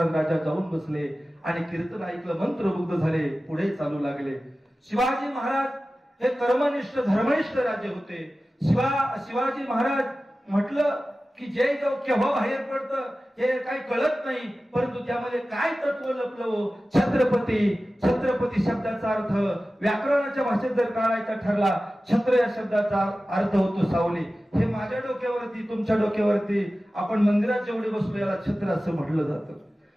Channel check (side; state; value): both; normal; correlation 0.95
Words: राजा जाऊन बसले, आणि कीर्तन ऐकलं, मंत्रमुग्ध झाले, पुढे चालू लागले. शिवाजी महाराज हे कर्मनिष्ठ धर्मनिष्ठ राजे होते. शिवाजी महाराज म्हटलं की जय जाऊ केव्हा बाहेर पडतं हे काही कळत नाही, परंतु त्यामध्ये काय तत्व लपलं. छत्रपती शब्दाचा अर्थ व्याकरणाच्या भाषेत जर काढायचा ठरला, छत्र या शब्दाचा अर्थ होतो सावली. हे माझ्या डोक्यावरती, तुमच्या डोक्यावरती, आपण मंदिरात जेवढे बसलो याला छत्र असं म्हटलं जातं.